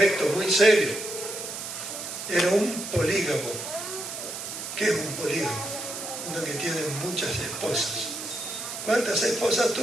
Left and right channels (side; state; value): right; noise; hiss, 7 dB below the sound